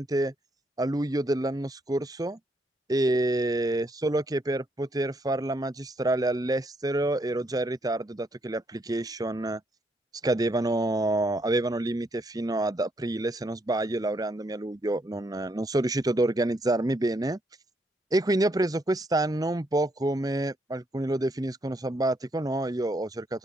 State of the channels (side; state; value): both; normal; correlation 0.74